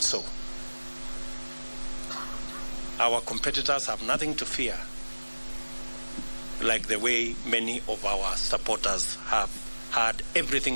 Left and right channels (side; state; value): both; inverted; correlation -1.00